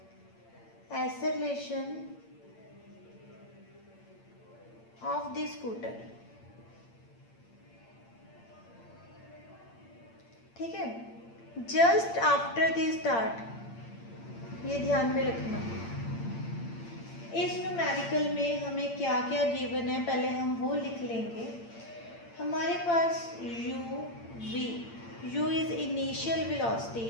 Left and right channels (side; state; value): right; late; 8.8 ms